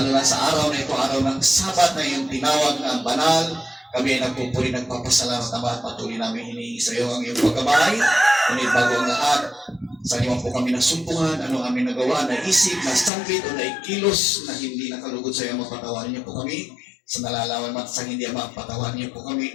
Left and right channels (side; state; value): right; drops out; at 13.1 s